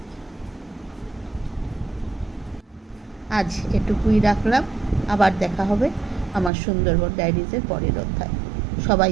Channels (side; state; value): left; drops out; at 6.5 s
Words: আজ এটুকুই রাখলাম। আবার দেখা হবে আমার সুন্দরবন ডায়েরিজের পরের অধ্যায়। সবাই